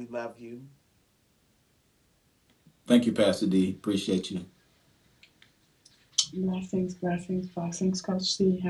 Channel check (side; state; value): both; identical; correlation 1.00